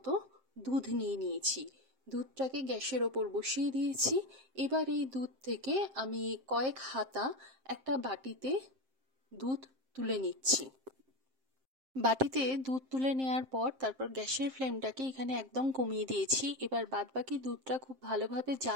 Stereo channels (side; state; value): left; late; 7.6 ms